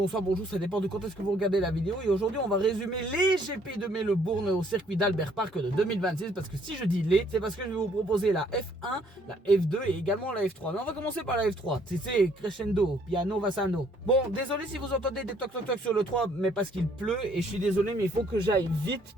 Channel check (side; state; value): both; normal; correlation 0.64